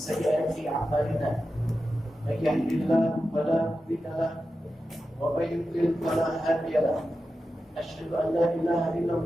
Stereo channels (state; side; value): normal; both; correlation 0.91